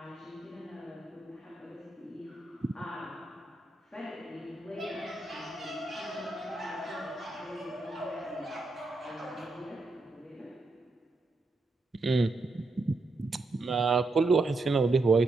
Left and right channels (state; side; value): quieter; left; 3.2 dB